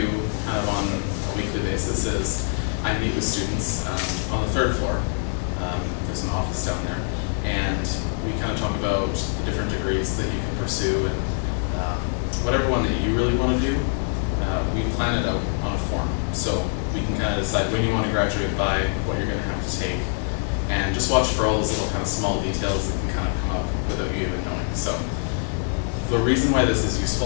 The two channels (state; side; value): silent; right; 62 dB below the other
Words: kind of on a weekly basis is I meet with students on the 3rd floor. There's an office down there, and we kind of talk about the different degrees that you can pursue, and whatever one that you really want to do, we plan it out on a form. So we can kind of decide when you want to graduate by, what you're going to have to take, and just watch for all those little kind of small details that can kind of come up without you even knowing. So the reason why this is